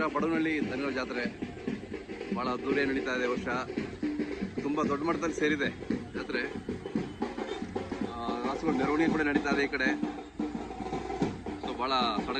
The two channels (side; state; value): both; identical; correlation 1.00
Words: ಬಡವನಹಳ್ಳಿ ದನಗಳ ಜಾತ್ರೆ. ಭಾಳ ಅದ್ದೂರಿಯಾಗಿ ನಡೀತಾ ಇದೆ. ವರ್ಷ ತುಂಬ ದೊಡ್ಡ ಮಟ್ಟದಲ್ಲಿ ಸೇರಿದೆ ಜಾತ್ರೆ. ರಾಸುಗಳ ಮೆರವಣಿಗೆ ಕೂಡ ನಡೀತಾ ಇದೆ ಈ ಕಡೆ. ಸೊ ಭಾಳ